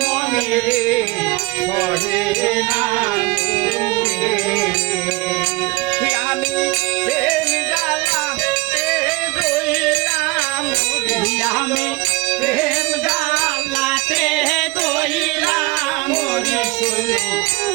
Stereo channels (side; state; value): left; quieter; 22.8 dB